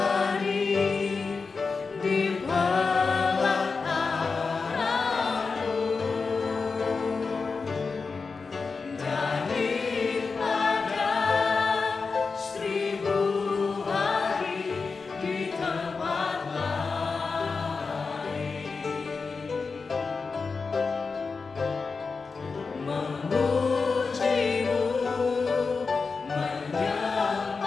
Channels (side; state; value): right; quieter; 4.6 dB